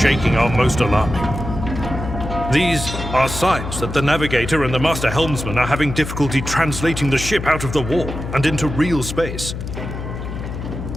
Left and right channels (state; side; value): noise; left; hum, 7 dB below the sound